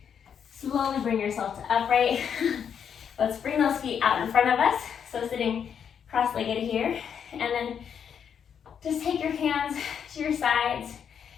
Slowly bring yourself to upright. Let's bring those feet out in front of us. So sitting cross-legged here. And then just take your hands to your sides.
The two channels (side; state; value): right; quieter; 7.8 dB